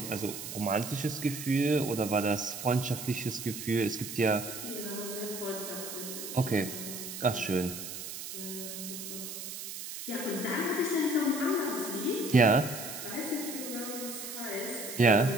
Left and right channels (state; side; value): noise; right; hiss, 8 dB below the sound